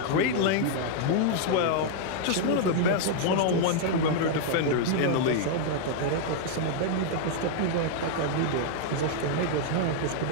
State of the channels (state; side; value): different; both; correlation -0.01